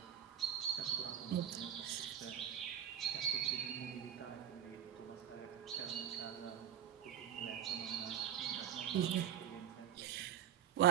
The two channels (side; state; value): left; quieter; 10.0 dB